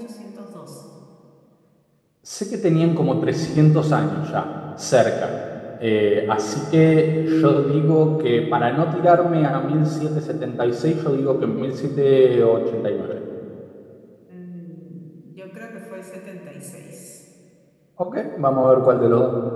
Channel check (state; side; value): identical; both; correlation 1.00